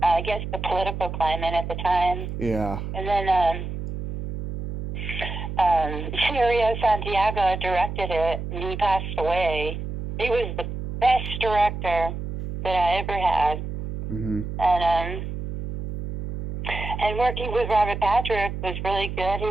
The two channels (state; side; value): noise; right; hum, 6 dB below the sound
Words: I guess, the political climate at the time. Yeah. And then Cirio Santiago directed it, and he passed away. He was the best director that I ever had. Mm-hmm. And working with Robert Patrick was really good.